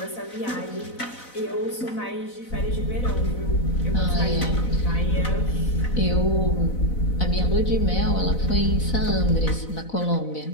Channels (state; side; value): late; right; 4.0 ms